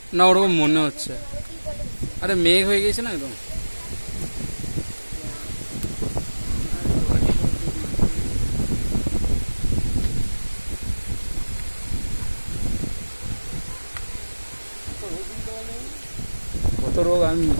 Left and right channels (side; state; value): both; inverted; correlation -1.00